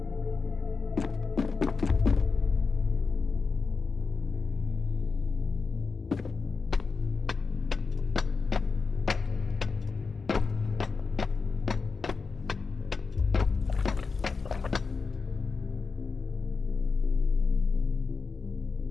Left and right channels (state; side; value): quieter; right; 4.7 dB